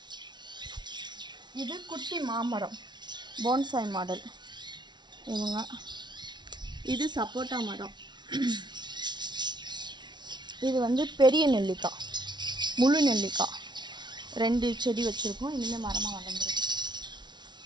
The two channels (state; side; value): late; left; 0.21 ms